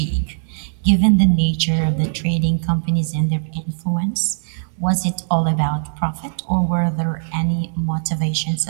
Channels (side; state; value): left; silent; digital silence